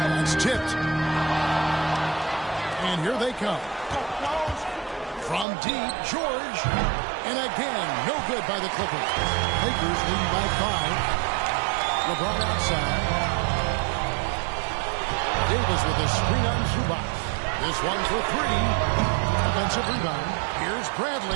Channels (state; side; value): drops out; left; at 5.5 s